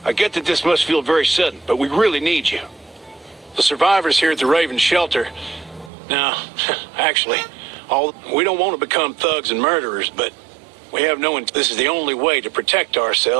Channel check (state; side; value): drops out; left; at 5.9 s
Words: I get that this must feel very sudden, but we really need you. The survivors here at the Raven shelter, now, actually, we don't want to become thugs and murderers, but we have this is the only way to protect